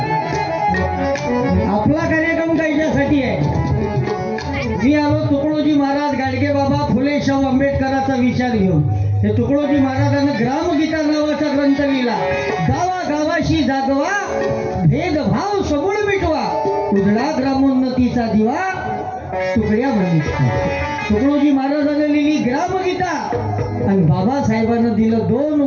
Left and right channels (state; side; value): identical; both; correlation 1.00